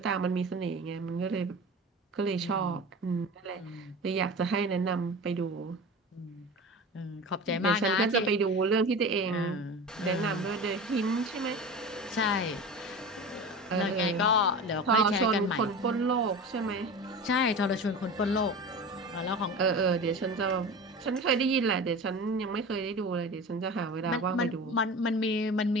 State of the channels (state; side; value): normal; both; correlation 0.32